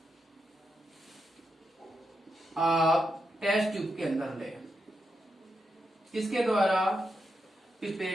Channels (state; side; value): normal; both; correlation 0.85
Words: आप टेस्ट ट्यूब के अंदर ले। किसके द्वारा,